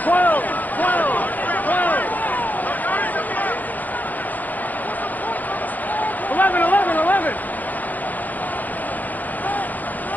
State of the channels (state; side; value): late; right; 0.083 ms